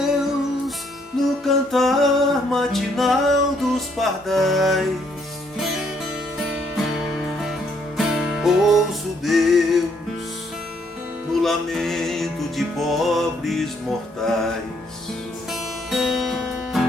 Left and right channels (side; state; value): both; normal; correlation 0.70